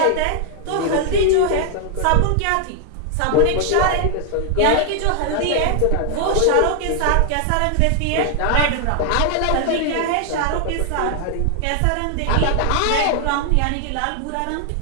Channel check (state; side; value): different; both; correlation 0.00